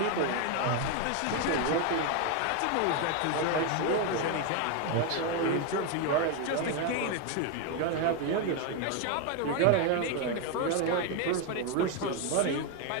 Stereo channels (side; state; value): both; different; correlation 0.01